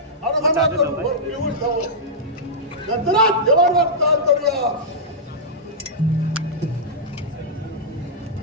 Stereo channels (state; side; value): normal; both; correlation -0.11